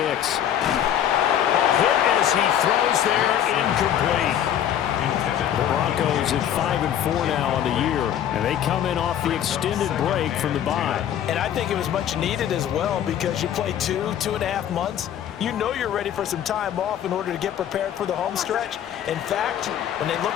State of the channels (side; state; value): right; quieter; 10.3 dB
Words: Hit as he throws there, incomplete. The Broncos at 5-4 now on the year, and they come in off the extended break from the bye. And I think it was much needed as well because you play 2.5 months. You know you're ready for some time off in order to get prepared for the home stretch. In fact, when they